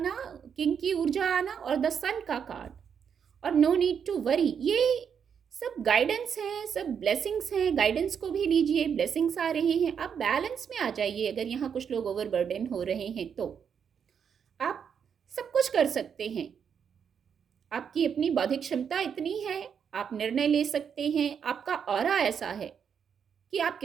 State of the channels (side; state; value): left; quieter; 7.4 dB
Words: किंग की ऊर्जा आना, और द सन का कार्ड, और नो नीड टू वरी, ये सब गाइडेंस है, सब ब्लेसिंग्स हैं। गाइडेंस को भी लीजिए, ब्लेसिंग्स आ रहे हैं, आप बैलेंस में आ जाइए। अगर यहाँ कुछ लोग ओवरबर्डन हो रहे हैं तो आप सब कुछ कर सकते हैं, आपकी अपनी बौद्धिक क्षमता इतनी है, आप निर्णय ले सकते हैं, आपका ऑरा ऐसा है कि आप